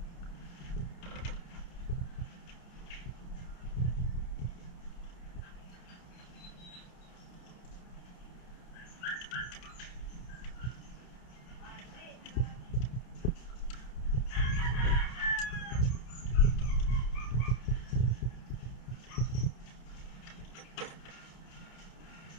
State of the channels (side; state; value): right; late; 29 ms